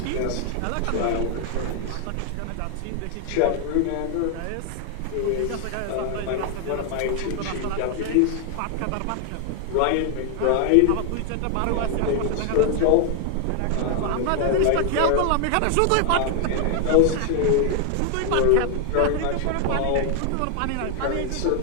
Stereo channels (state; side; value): different; both; correlation 0.00